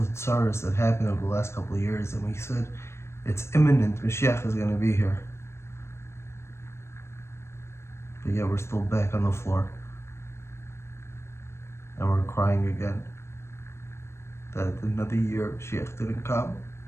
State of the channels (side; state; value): right; late; 0.13 ms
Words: tsaras that happened over the last couple of years, and we said, it's imminent, Mashiach is going to be here. But yet we're still back on the floor. And we're crying again that another year of Mashiach didn't come,